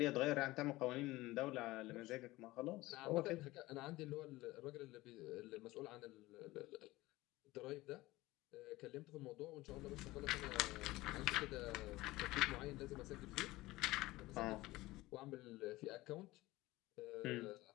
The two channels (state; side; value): quieter; right; 19.0 dB